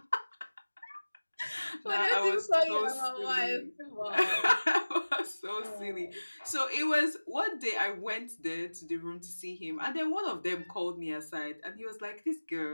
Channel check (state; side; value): inverted; both; correlation -1.00